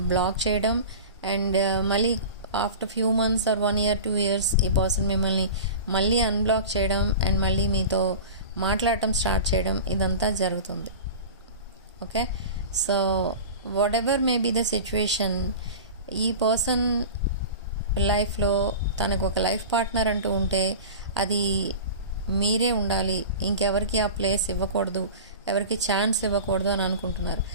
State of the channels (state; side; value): inverted; both; correlation -0.33